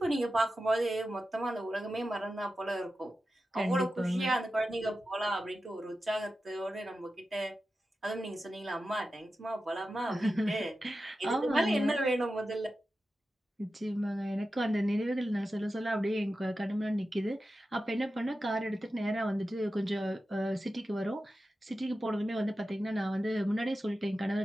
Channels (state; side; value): normal; both; correlation 0.92